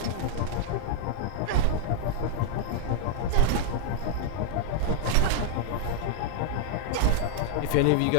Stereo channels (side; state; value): both; different; correlation -0.01